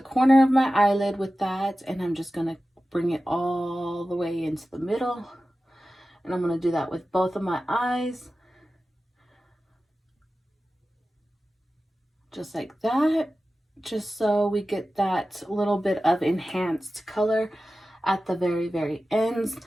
of my eyelid with that, and I'm just going to bring it all the way into the middle, and I'm going to do that with both of my eyes. Just like that, just so we get that little bit of enhanced color at the very, very ends.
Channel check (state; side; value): normal; both; correlation 0.94